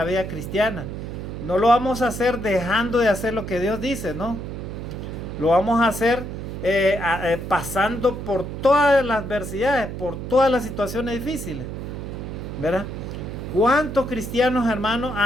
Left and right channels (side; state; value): right; noise; hum, 7 dB below the sound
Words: vida cristiana, no lo vamos a hacer dejando de hacer lo que Dios dice, no. Lo vamos a hacer pasando por todas las adversidades, por todas las situaciones difíciles, ¿verdad? ¿Cuántos cristianos, hermanos,